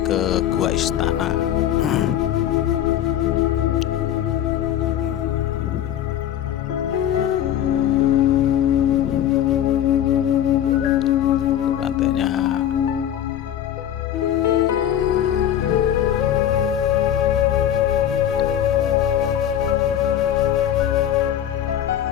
Gua Istana. Pantainya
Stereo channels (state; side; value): quieter; right; 10.7 dB